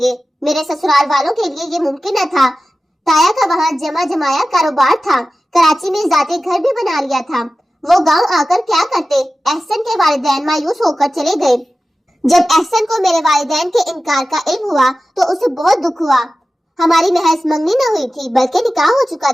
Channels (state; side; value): normal; both; correlation 0.95